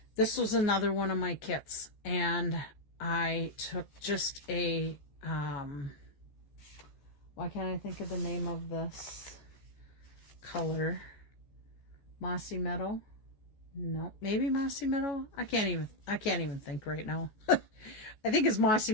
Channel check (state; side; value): late; right; 14 ms